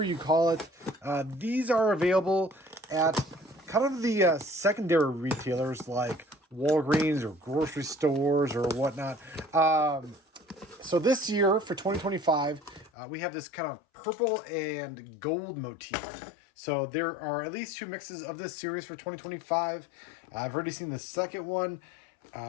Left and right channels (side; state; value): right; drops out; at 12.9 s